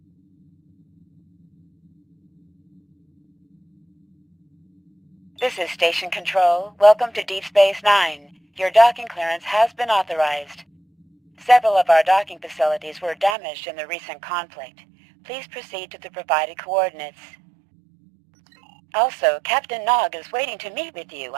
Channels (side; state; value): left; drops out; at 13.4 s